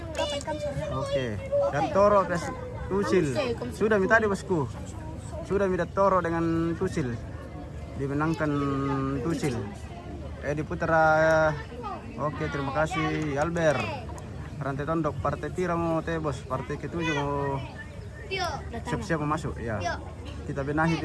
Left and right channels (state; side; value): identical; both; correlation 1.00